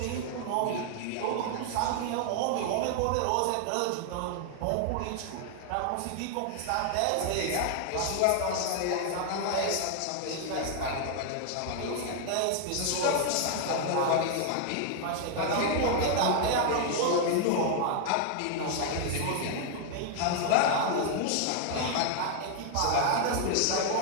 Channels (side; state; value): both; different; correlation 0.00